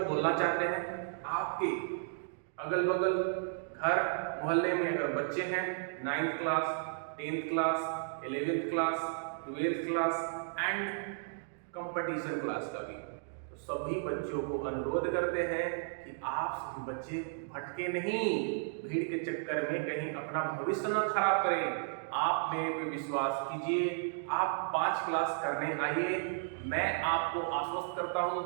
बोलना चाहते हैं, आपके अगल बगल घर मोहल्ले में अगर बच्चे हैं 9th class 10th class 11th class 12th class and competition class का भी, तो सभी बच्चों को अनुरोध करते हैं कि आप सभी बच्चे भटके नहीं, भीड़ के चक्कर में कहीं अपना भविष्य न खराब करें। आप मेरे पे विश्वास कीजिए, आप 5 क्लास करने आइए, मैं आपको आश्वस्त करता हूँ,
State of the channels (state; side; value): silent; left; digital silence